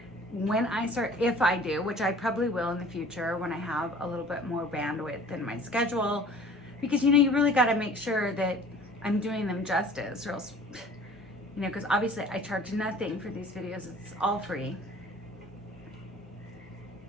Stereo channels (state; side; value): normal; both; correlation 0.48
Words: When I start, if I do, which I probably will in the future when I have a little bit more bandwidth in my schedule, because, you know, you really got to make sure that I'm doing them justice, or else, you know, because obviously I charge nothing for these videos. It's all free,